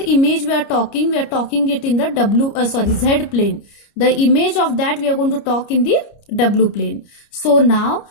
image we are talking it in the Z plane. The image of that we are going to talk in the W plane. So now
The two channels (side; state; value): right; late; 29 ms